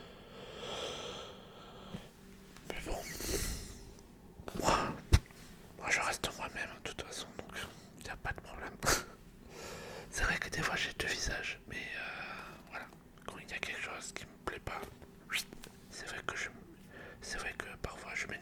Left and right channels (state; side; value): identical; both; correlation 1.00